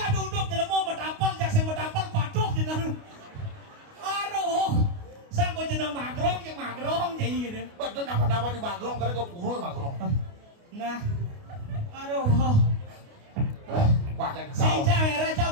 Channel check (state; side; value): late; left; 29 ms